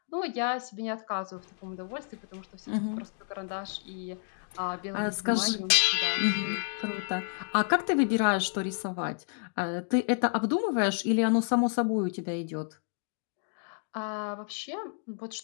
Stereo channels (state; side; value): silent; right; 58 dB below the other